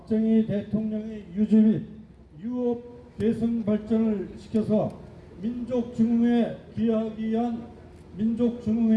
대통령의 유지 및 유업 개성 발전을 시켜서 민족중흥에 기여하기 위한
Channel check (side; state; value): both; identical; correlation 1.00